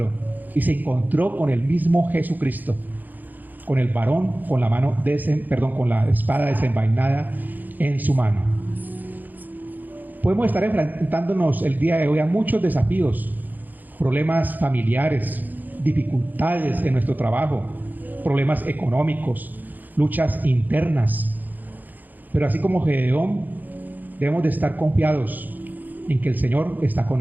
Y se encontró con el mismo Jesucristo, con el varón con la mano con la espada desenvainada en su mano. Podemos estar enfrentándonos el día de hoy a muchos desafíos, problemas familiares, dificultades en nuestro trabajo, problemas económicos, luchas internas. Pero así como Gedeón, debemos de estar confiados en que el Señor está con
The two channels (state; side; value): late; left; 0.085 ms